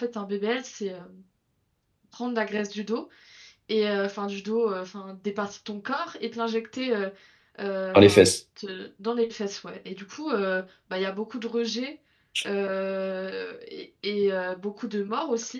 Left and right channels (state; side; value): identical; both; correlation 1.00